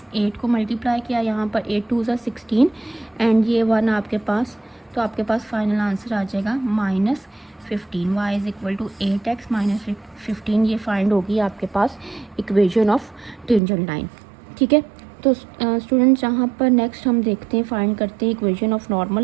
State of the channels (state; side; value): drops out; left; at 13.6 s